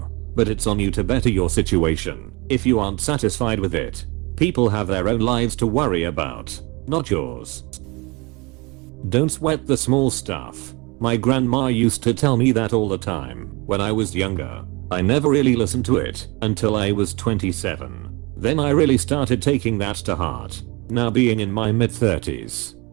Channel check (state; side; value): quieter; left; 26.6 dB